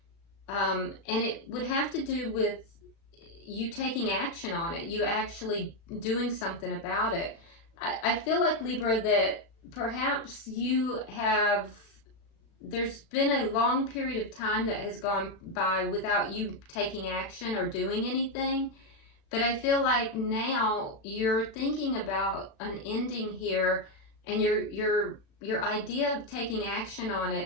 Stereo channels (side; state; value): right; late; 36 ms